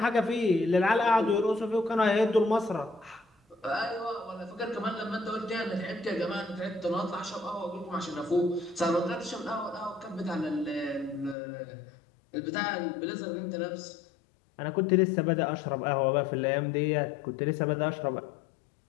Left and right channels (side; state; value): right; drops out; at 11.4 s